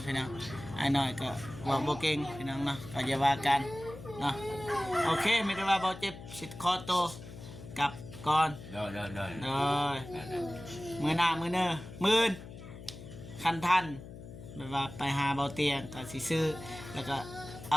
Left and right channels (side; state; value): left; noise; hum, 14 dB below the sound